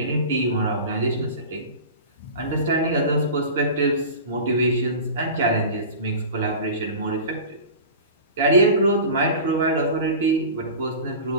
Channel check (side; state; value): both; inverted; correlation -0.34